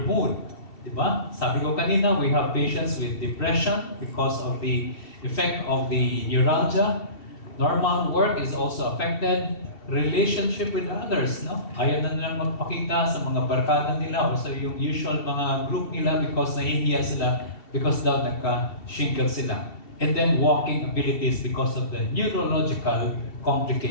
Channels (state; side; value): late; right; 2.7 ms